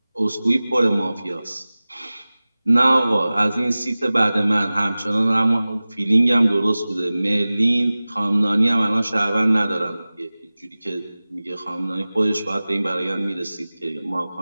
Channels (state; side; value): inverted; both; correlation -0.98